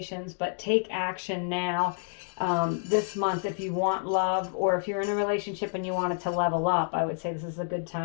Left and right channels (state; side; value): silent; right; digital silence